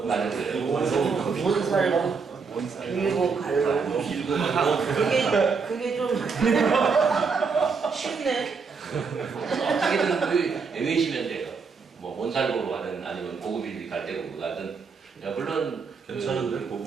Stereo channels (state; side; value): quieter; left; 5.2 dB